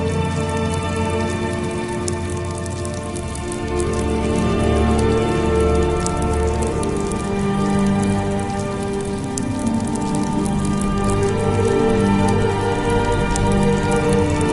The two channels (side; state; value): both; identical; correlation 1.00